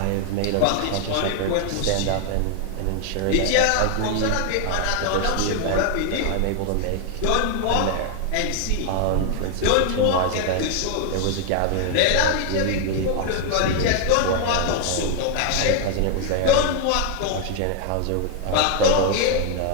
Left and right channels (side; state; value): both; different; correlation 0.00